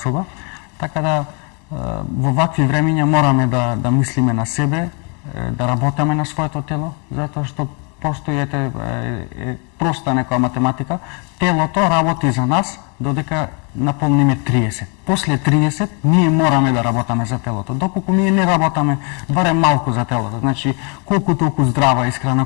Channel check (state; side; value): quieter; right; 35.1 dB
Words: Така да во вакви времиња мораме да мислиме на себе, да работиме на своето тело, затоа што постои проста некоја математика. Телото работи за нас додека наполниме 30. После 30 ние мораме да работаме за телото. Доколку ние не работаме барем малку за телото, значи колку толку здрава исхрана,